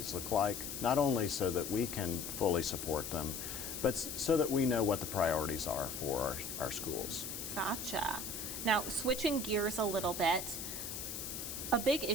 look like, not only so that we can fully support them, but so that we know what the priorities are for our schools. Gotcha. Now, switching gears a little bit, a big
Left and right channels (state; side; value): noise; left; hiss, 6 dB below the sound